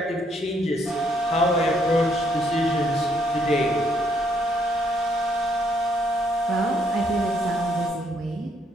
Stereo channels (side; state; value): both; normal; correlation 0.70